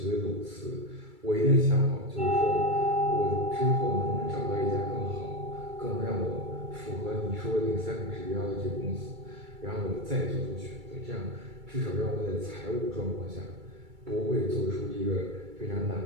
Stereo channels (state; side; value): late; left; 2.3 ms